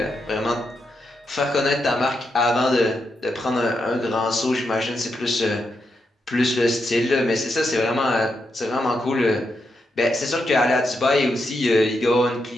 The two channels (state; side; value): normal; both; correlation 0.83